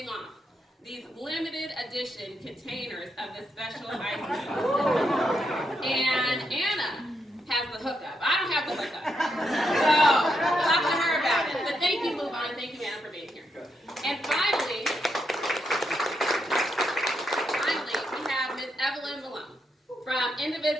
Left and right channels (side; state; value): both; normal; correlation 0.81